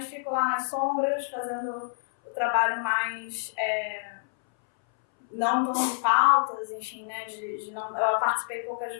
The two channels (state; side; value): silent; right; 60 dB below the other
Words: fico lá nas sombras, fazendo o trabalho mais... não tão de pautas, enfim, né? Eu participei poucas